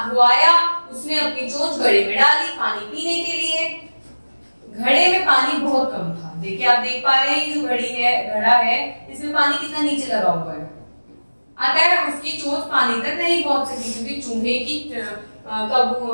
आया, उसने अपनी चोंच घड़े में डाली पानी पीने के लिए। घड़े में पानी बहुत कम था। देखिए आप देख पा रहे हैं जो घड़ा है, इसमें पानी कितना नीचे लगा हुआ है। अतः उसकी चोंच पानी तक नहीं पहुंच सकी क्योंकि चूहे की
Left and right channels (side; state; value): both; inverted; correlation -1.00